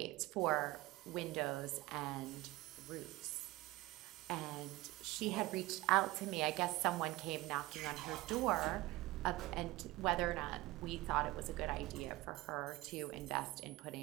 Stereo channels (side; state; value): left; quieter; 19.4 dB